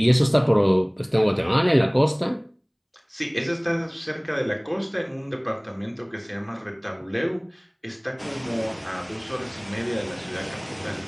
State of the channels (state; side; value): identical; both; correlation 1.00